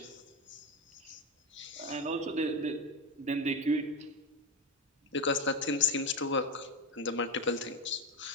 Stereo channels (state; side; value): normal; both; correlation 0.14